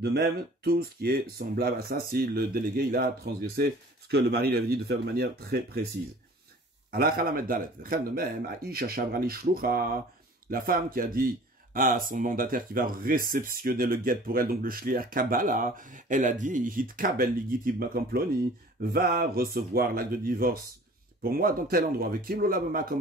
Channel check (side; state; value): both; normal; correlation 0.47